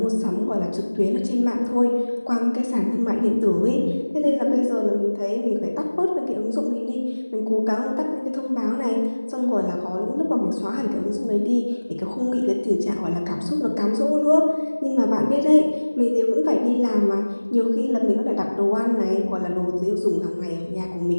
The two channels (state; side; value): inverted; both; correlation -1.00